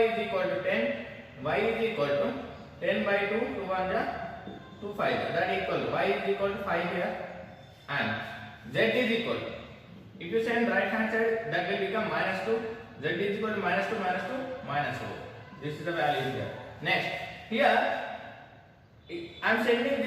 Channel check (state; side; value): identical; both; correlation 1.00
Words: is equal to 10. Y is equal to 10 by 2, 2 1 ja, 2 5. That equal to y is equal to 5 here. And z is equal to, if you send right hand side, that will become minus 2. Z is equal to minus 2, minus 2, minus 4. This is the value here. Next, here I am sending